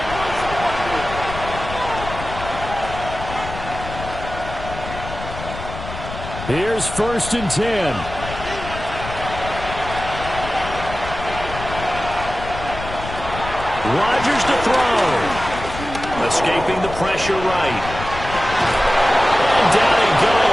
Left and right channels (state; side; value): noise; left; rumble, 10 dB below the sound